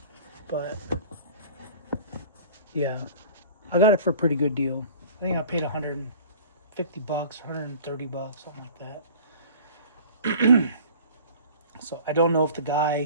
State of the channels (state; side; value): inverted; both; correlation -0.45